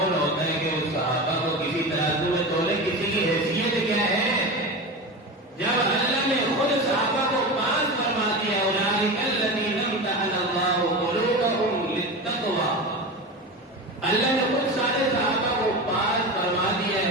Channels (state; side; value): normal; both; correlation 0.25